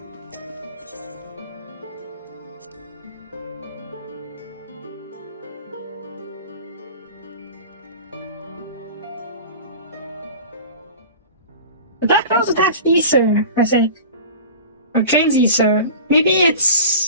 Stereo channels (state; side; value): inverted; both; correlation -0.37